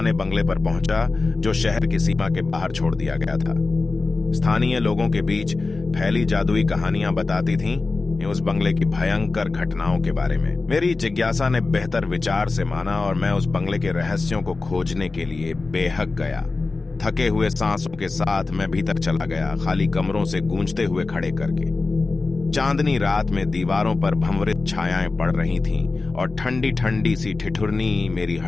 बंगले पर पहुंचा जो शहर की सीमा के बाहर छोड़ दिया गया था। स्थानीय लोगों के बीच फैली जादुई कहानियां बताती थीं उस बंगले की भयंकर घटनाओं के बारे में। मेरी जिज्ञासा ने बेहतर विचार से माना और मैं उस बंगले के रहस्यों को खोजने के लिए बेहक गया। थके हुए सांसों के साथ मैं भीतर चला गया, खाली कमरों से गूंजते हुए खड़े करके। चांदनी रात में दीवारों पर भंवरित छायाएं पड़ रही थीं और ठंडी ठंडी सी ठिठुरनी मेरी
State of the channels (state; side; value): quieter; right; 3.7 dB